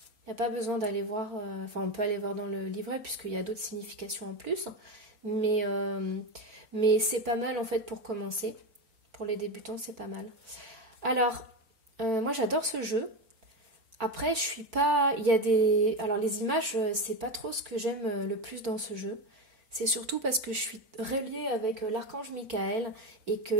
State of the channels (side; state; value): left; late; 4.4 ms